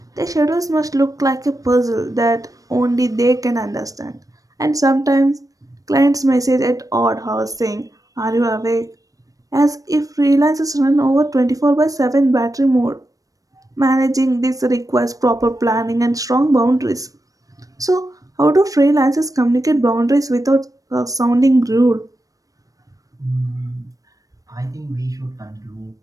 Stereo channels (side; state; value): left; late; 0.17 ms